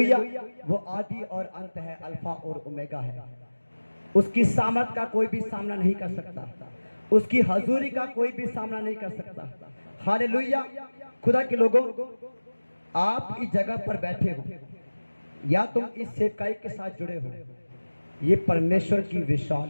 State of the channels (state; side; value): inverted; both; correlation -1.00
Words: वो आदि और अंत है, अल्फा और ओमेगा है। उसकी सामर्थ का कोई भी सामना नहीं कर सकता, उसकी हजूरी का कोई भी सामना नहीं कर सकता। हालेलुया। खुदा के लोगों, आप इस जगह पर बैठे हो या तुम इस सेवकाई के साथ जुड़े हो, ये परमेश्वर की